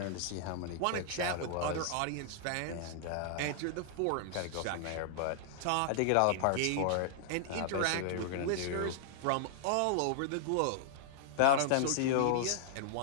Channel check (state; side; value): different; both; correlation -0.01